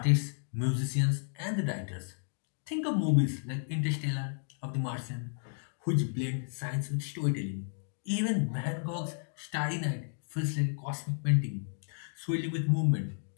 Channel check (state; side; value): silent; right; digital silence